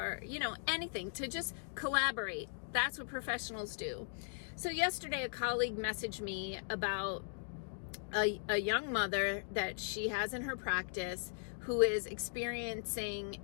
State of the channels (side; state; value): right; silent; digital silence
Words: you know, anything to just collaborate. That's what professionals do. So yesterday a colleague messaged me about a young mother that she has in her practice who is